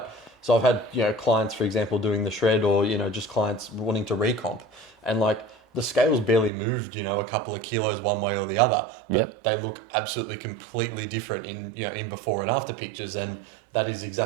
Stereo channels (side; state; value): left; drops out; at 6.5 s